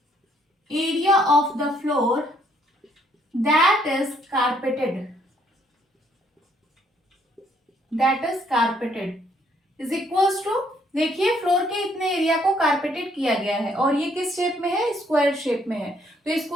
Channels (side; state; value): both; normal; correlation 0.67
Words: floor that is carpeted is equals to, देखिए फ्लोर के इतने एरिया को कारपेटेड किया गया है, और ये किस शेप में है, स्क्वायर शेप में है। तो